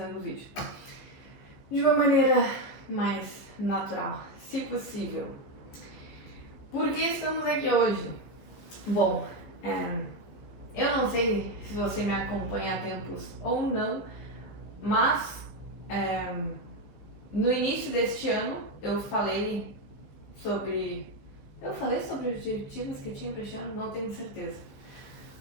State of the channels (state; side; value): late; right; 15 ms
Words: o vídeo de uma maneira mais natural, se possível. Por que estamos aqui hoje? Bom, eu não sei se você me acompanha há tempos ou não, mas no início deste ano eu falei sobre. Eu falei sobre os objetivos que eu tinha para este ano? Não tenho certeza.